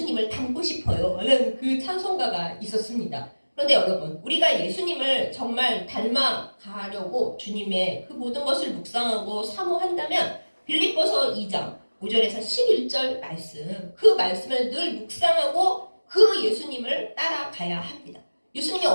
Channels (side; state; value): both; inverted; correlation -1.00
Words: 닮고 싶어요 라는 그 찬송가가 있었습니다. 그런데 여러분, 우리가 예수님을 정말 닮아가려고 주님의 그 모든 것을 묵상하고 사모한다면 빌립보서 2장 5절에서 11절 말씀, 그 말씀을 늘 묵상하고 그 예수님을 따라가야 합니다. 예수님이